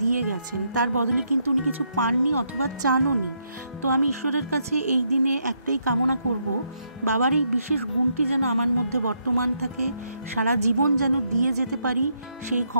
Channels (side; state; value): both; inverted; correlation -0.77